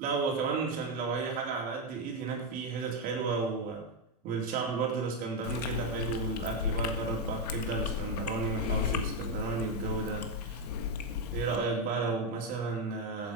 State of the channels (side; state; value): both; normal; correlation 0.06